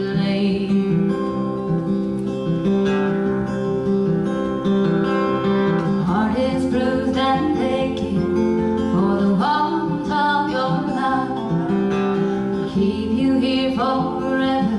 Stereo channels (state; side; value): identical; both; correlation 1.00